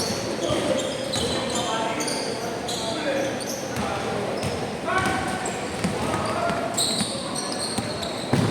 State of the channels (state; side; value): identical; both; correlation 1.00